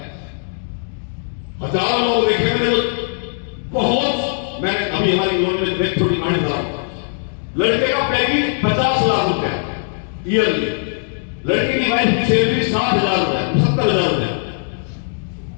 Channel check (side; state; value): right; silent; digital silence